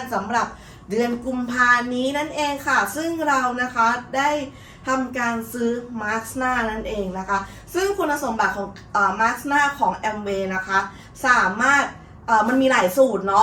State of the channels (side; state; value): both; identical; correlation 1.00